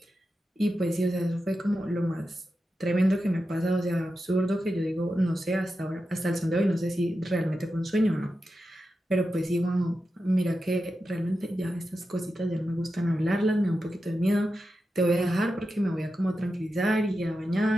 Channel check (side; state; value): both; normal; correlation 0.90